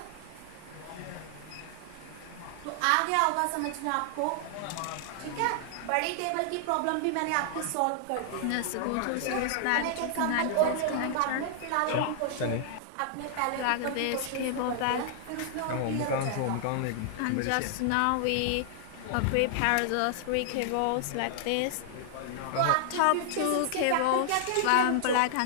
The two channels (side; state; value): both; different; correlation -0.01